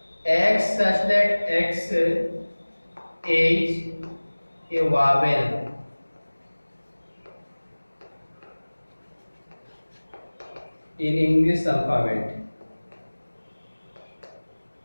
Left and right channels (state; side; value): inverted; both; correlation -1.00